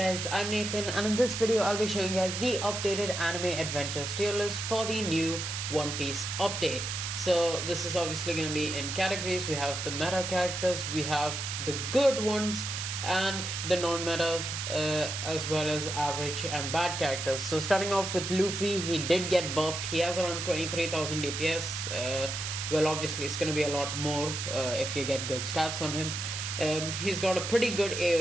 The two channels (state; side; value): noise; right; hiss, 4 dB below the sound